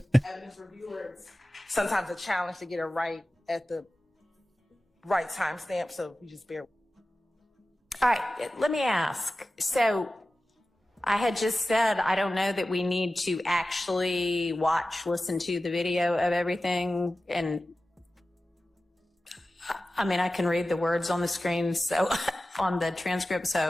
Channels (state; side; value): normal; both; correlation 0.95